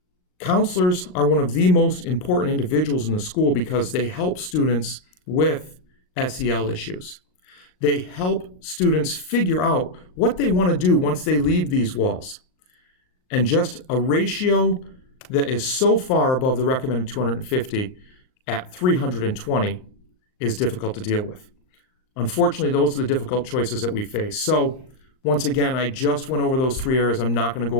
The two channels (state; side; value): late; right; 38 ms